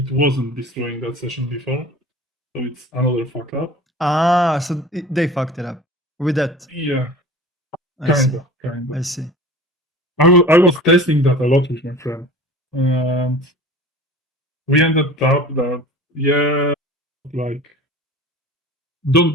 wasn't destroying that session before, so it's another fuck up. Ah, so they fucked it up with that. Yeah, I see. kind I of. see. I was testing that a lot with my friend, and we ended up that like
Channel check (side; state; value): both; normal; correlation 0.40